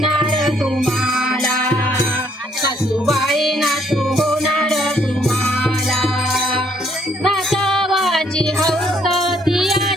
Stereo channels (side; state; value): both; normal; correlation 0.67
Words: तुम्हाला, सासूबाई नातू होणार तुम्हाला. नातवाची हौस ती